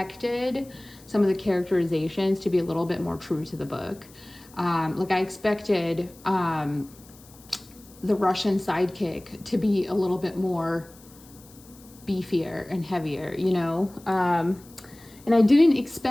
some of the characterizations to be a little bit more true to the book. Like I expected the Russian sidekick to be a little bit more beefier and heavier, you know? And I didn't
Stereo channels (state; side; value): noise; left; hiss, 24 dB below the sound